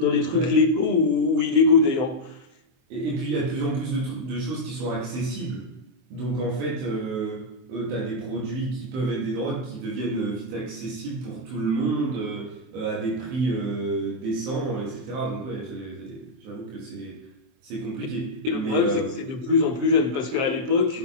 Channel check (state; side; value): late; left; 23 ms